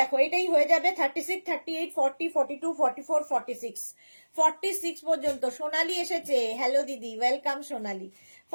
এটাই হয়ে যাবে 36, 38, 40, 42, 44, 46, 46 পর্যন্ত। সোনালি এসেছে, হ্যালো দিদি, ওয়েলকাম সোনালি।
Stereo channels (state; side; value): inverted; both; correlation -1.00